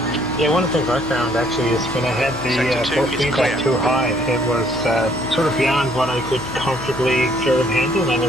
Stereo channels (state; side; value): noise; left; hum, 16 dB below the sound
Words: Yeah, one of the things I found actually is when I had the force feedback too high, it was sort of beyond what I could comfortably sort of handle, and